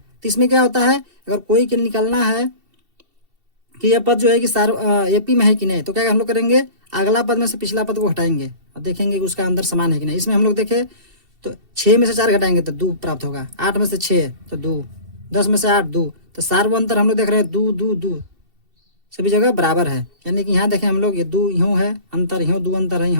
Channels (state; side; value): late; left; 2.7 ms